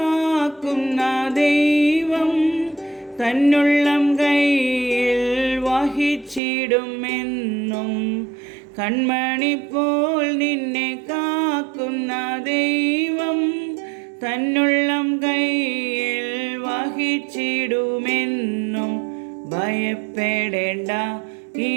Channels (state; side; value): drops out; left; at 6.4 s